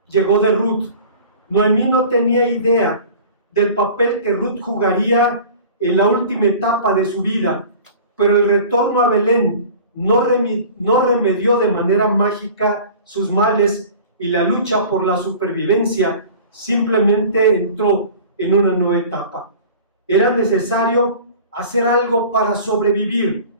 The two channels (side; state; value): both; inverted; correlation -0.42